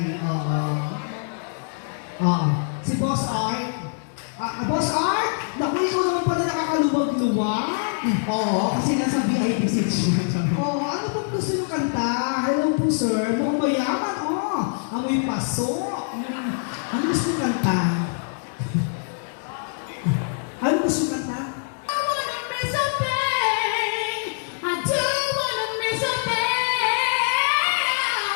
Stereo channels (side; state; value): right; silent; digital silence